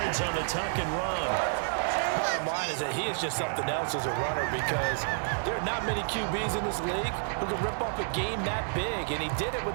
on the tuck and run. Bottom line is that he is just something else as a runner because there are not many QBs in this league who can rip off a game that big, and he did it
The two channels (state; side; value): silent; left; digital silence